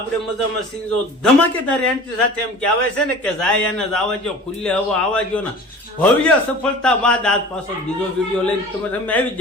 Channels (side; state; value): both; normal; correlation 0.41